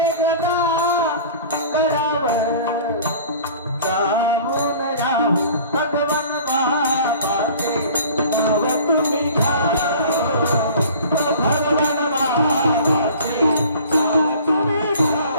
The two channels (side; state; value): both; inverted; correlation -0.45